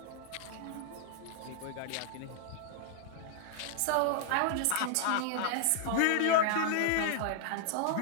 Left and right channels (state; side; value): different; both; correlation 0.00